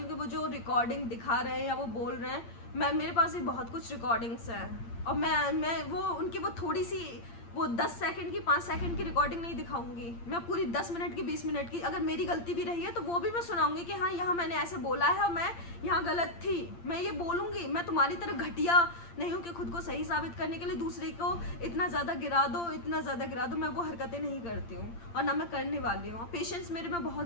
हूँ कि वो जो रिकॉर्डिंग दिखा रहे हैं या वो बोल रहे हैं, मेरे पास भी बहुत कुछ रिकॉर्डिंग्स हैं, और मैं वो उनकी वो थोड़ी सी वो 10 सेकंड की 5 सेकंड की रिकॉर्डिंग नहीं दिखाऊंगी, मैं पूरी 10 मिनट की 20 मिनट की, अगर मेरी गलती भी रही है तो वो भी मैं सुनाऊंगी कि हाँ यहाँ मैंने ऐसे बोला है और मैं यहाँ गलत थी, मैं ये बोलूँगी। मैं तुम्हारी तरह घटिया नहीं हूँ कि खुद को सही साबित करने के लिए दूसरे को इतना ज़्यादा गिरा दो, इतना ज़्यादा गिरा दो, मैं वो हरकतें नहीं करती हूँ और ना मैं करने वाली हूँ। पेशेंस मेरे में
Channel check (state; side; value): late; right; 8.7 ms